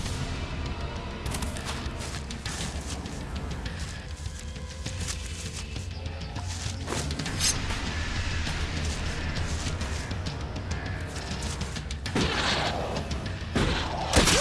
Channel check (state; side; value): identical; both; correlation 1.00